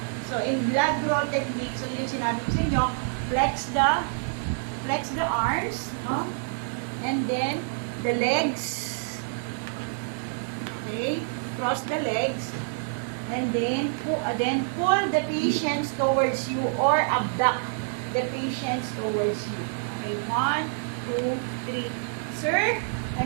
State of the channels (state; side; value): silent; left; digital silence